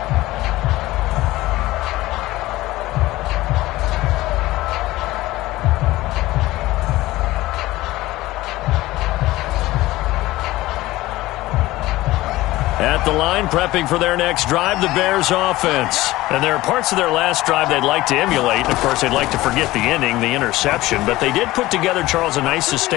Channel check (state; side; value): quieter; right; 17.8 dB